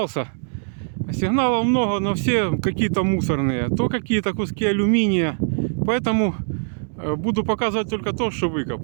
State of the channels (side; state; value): left; silent; digital silence